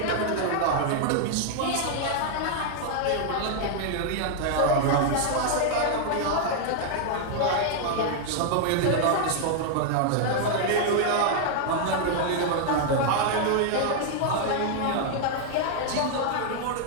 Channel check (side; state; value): both; different; correlation 0.00